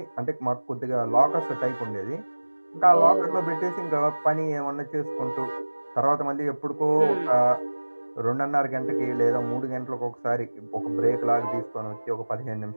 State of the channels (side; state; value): both; inverted; correlation -1.00